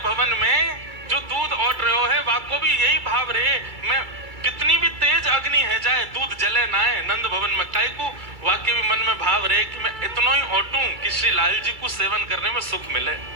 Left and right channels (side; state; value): left; late; 2.3 ms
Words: में जो दूध ऑर्डर रहे हो है, वाको भी यही भाव रहे, मैं कितनी भी तेज अग्नि है जाए दूध जले ना है नंद भवन में, काई को वाक्य भी मन में भाव रहे कि मैं इतना ही ऑटूं कि श्री लाल जी को सेवन करने में सुख मिले।